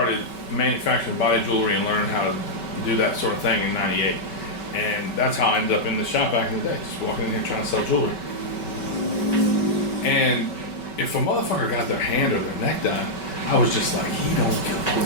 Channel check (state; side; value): late; right; 5.2 ms